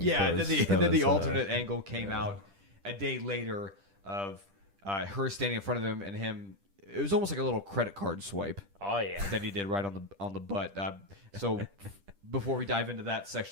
Yeah, that then the was, alternate angle came out a day later of her standing in front of him and him. It was almost like a little credit card swipe Oh yeah. that he did right on the butt. So before we dive into that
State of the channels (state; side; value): late; left; 10 ms